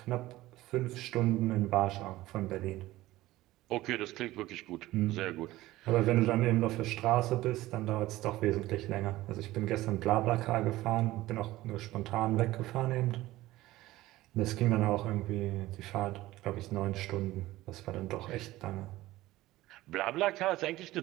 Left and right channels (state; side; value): quieter; left; 17.0 dB